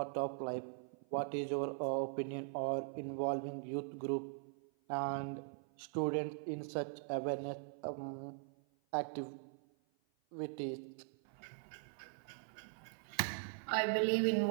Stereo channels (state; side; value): silent; left; 50 dB below the other